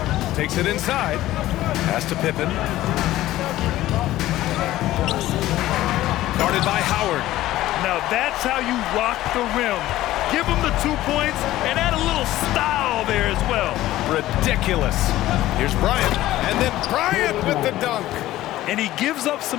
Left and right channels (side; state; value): right; quieter; 15.3 dB